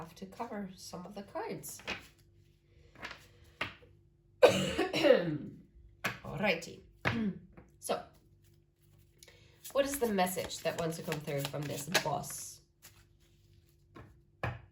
to cover some of the cards. Alrighty. So, what is the message that wants to come through from this boss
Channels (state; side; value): identical; both; correlation 1.00